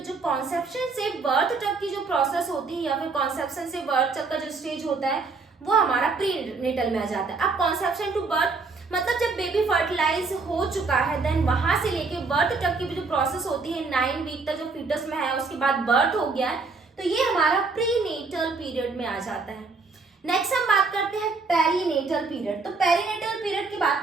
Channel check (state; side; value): quieter; left; 4.2 dB